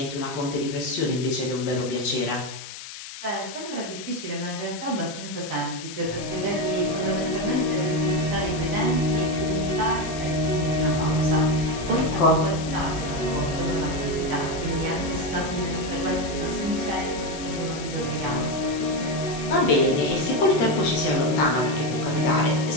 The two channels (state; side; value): noise; left; hiss, 12 dB below the sound